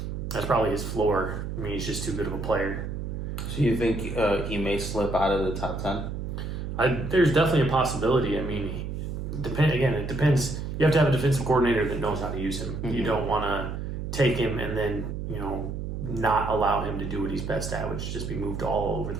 That's probably his floor. I mean, he's just too good of a player. So you think he may slip out of the top 10? There's definitely a possibility. I mean, it depends. You have to have a defensive coordinator that knows how to use him. Mm-hmm. You don't want to take him and then, not allow him to do what he's best at, which is just be moved all over the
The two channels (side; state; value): right; noise; hum, 5 dB below the sound